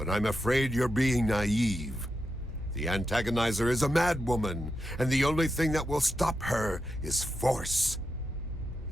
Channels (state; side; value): normal; both; correlation 0.87